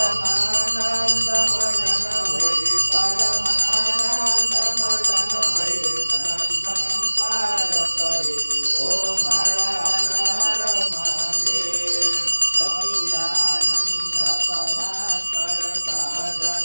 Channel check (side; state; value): both; inverted; correlation -1.00